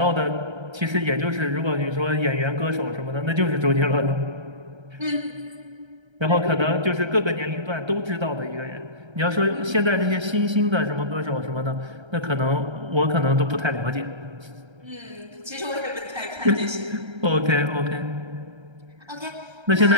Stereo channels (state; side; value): late; left; 1.3 ms